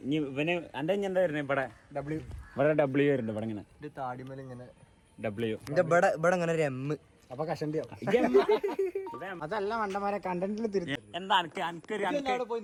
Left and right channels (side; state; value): both; identical; correlation 1.00